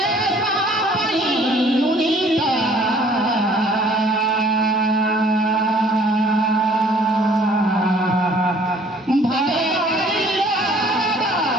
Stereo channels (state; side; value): normal; both; correlation 0.56